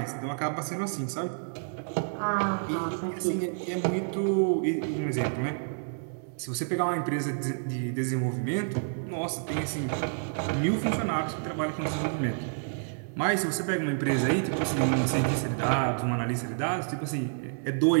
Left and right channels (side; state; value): left; silent; digital silence